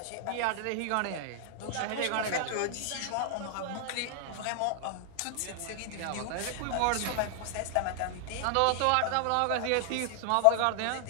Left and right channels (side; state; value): both; different; correlation 0.00